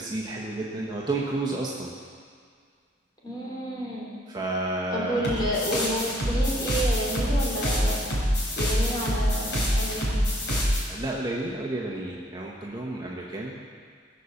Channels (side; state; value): both; normal; correlation 0.64